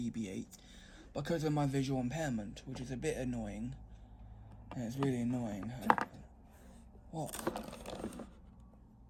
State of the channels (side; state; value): both; identical; correlation 1.00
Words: because of my visual impairment, which is a bit annoying. And it's really annoying. What?